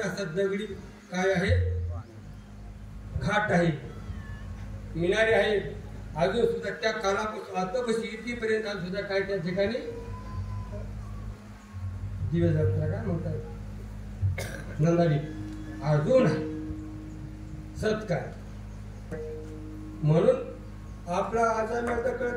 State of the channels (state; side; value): identical; both; correlation 1.00